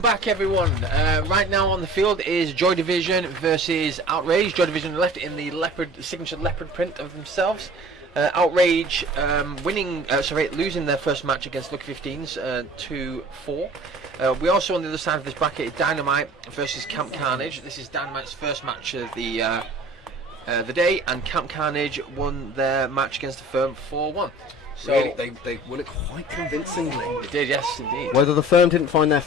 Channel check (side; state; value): both; normal; correlation 0.45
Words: back, everyone. Right now on the field is Joy Division versus Outrage. Joy Division left in the signature leopard print of themselves. Outrage losing their first match against Lucky 15s 2-4. We also on the other side of this bracket Dynamite versus Camp Carnage. This is Dynamite's first match of the day, and Camp Carnage won their match against the firm 4-1. So Really, they won it quite convincingly. they did, yes, indeed. Whether the firm didn't find their